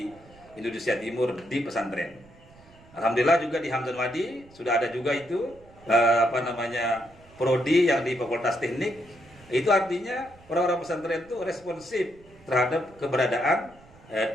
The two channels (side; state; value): right; noise; rumble, 25 dB below the sound